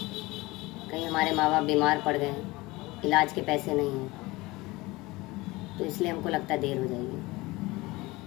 कहीं हमारे माँ बाप बीमार पड़ गए, इलाज के पैसे नहीं हैं, तो इसलिए हमको लगता है देर हो जाएगी।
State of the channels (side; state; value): right; quieter; 21.5 dB